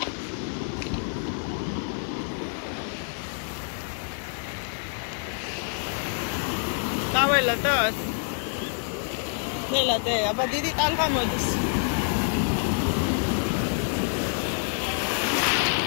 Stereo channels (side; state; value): right; silent; digital silence